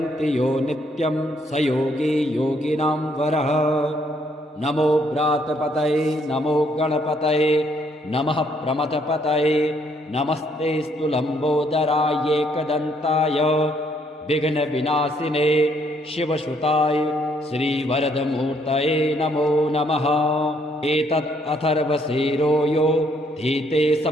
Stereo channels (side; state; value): both; normal; correlation 0.69